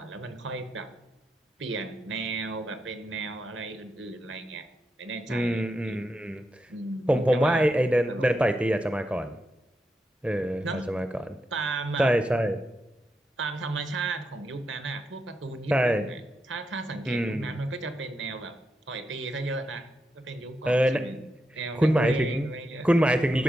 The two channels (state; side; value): normal; both; correlation 0.85